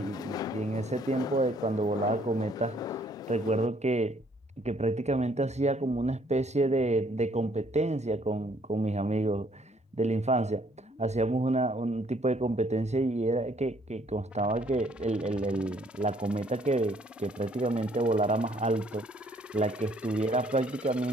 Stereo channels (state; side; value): normal; both; correlation 0.64